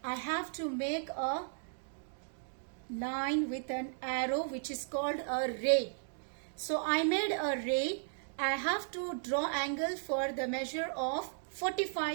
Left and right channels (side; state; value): left; silent; digital silence